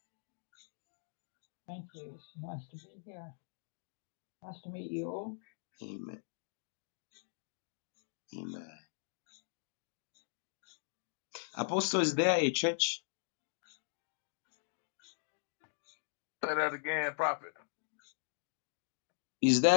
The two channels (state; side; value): silent; right; digital silence